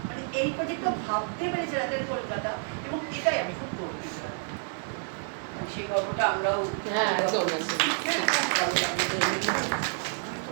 মানে এই প্রজেক্টটা ভাবতে পেরেছে রাতের কলকাতা, এবং এটাই আমি খুব গর্বিত। সেই গল্পটা আমরাও একদম হ্যাঁ, আমি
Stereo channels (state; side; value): silent; left; 59 dB below the other